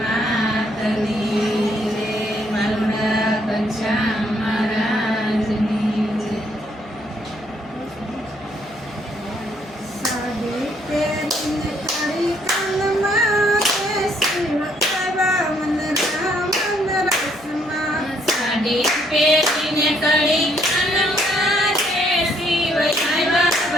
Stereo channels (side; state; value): right; noise; hum, 25 dB below the sound